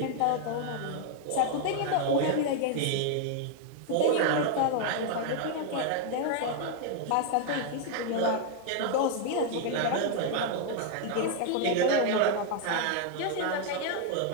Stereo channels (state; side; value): different; both; correlation 0.00